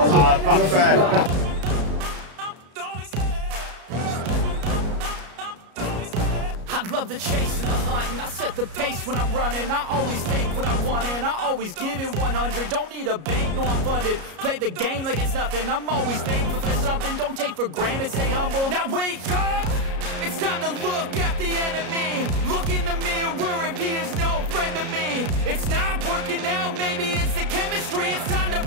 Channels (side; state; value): left; late; 33 ms